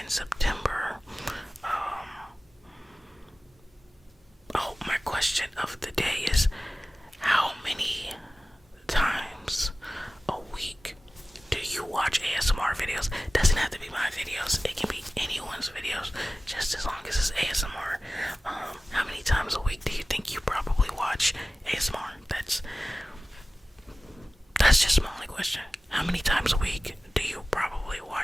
September? Oh, my question of the day is, how many times a week do you watch ASMR videos? Doesn't have to be my videos. It can be anyone's videos, just as long as it's ASMR. How many times a week do you think you probably watch ASMR? That's just my only question. How many times a week do you probably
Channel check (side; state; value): both; normal; correlation 0.96